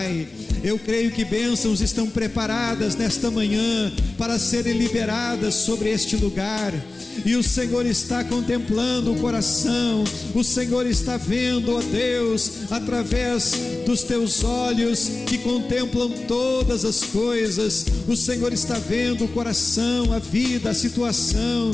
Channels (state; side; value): quieter; right; 3.2 dB